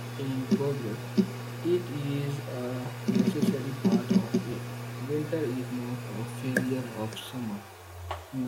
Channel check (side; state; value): both; identical; correlation 1.00